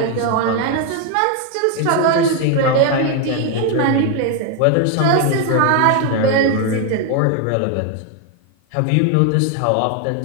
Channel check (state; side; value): different; both; correlation 0.01